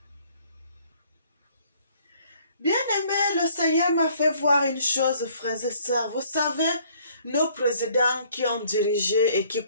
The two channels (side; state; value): both; inverted; correlation -0.60